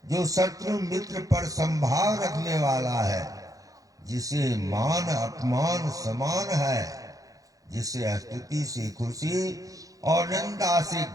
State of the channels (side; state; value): left; late; 0.17 ms